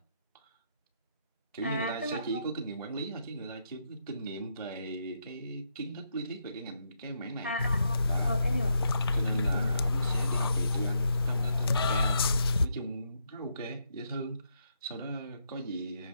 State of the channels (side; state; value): both; inverted; correlation -0.79